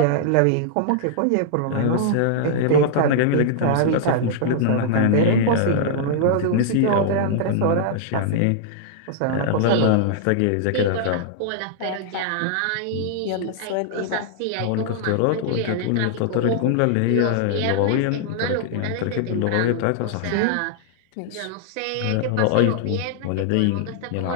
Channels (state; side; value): different; both; correlation -0.01